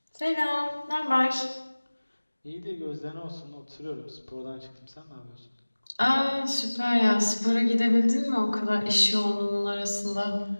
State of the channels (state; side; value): inverted; both; correlation -1.00